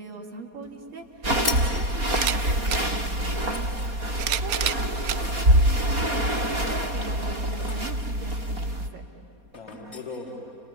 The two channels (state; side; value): late; left; 4.2 ms